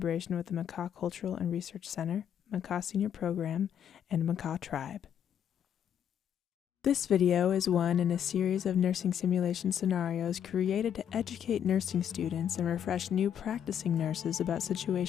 with the Makah Cultural and Research Center, Makah Senior Program, and Makah Tribe. This video is one in a series of nursing simulation scenarios created to educate nursing students and refresh new practicing nurses about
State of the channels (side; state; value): right; quieter; 9.1 dB